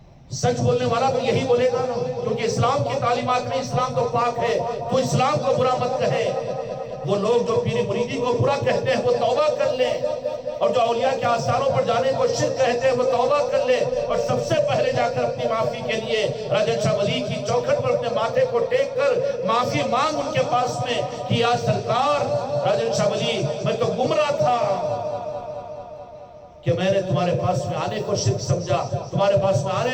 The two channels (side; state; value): both; identical; correlation 1.00